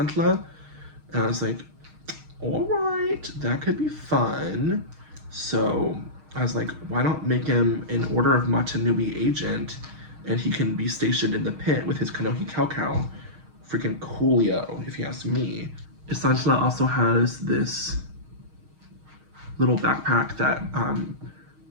And I was like, all right, that could be fun. So I was like, why not make him an Order of Matanui agent and he can be stationed in the pit with his Kanohi Cow. Freaking coolio, if you ask me. Isandla also has this little backpack that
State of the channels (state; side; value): late; left; 6.4 ms